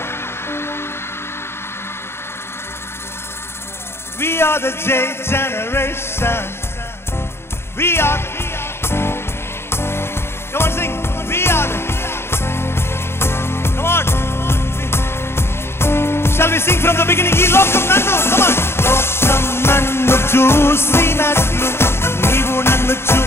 We are the J generation. We are. Come on, sing. We are the. Come on. Shall we sing from the beginning? Ee lokam nannu. Come on. Lokam nannu chusinatlu neevu nannu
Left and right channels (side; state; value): right; late; 0.12 ms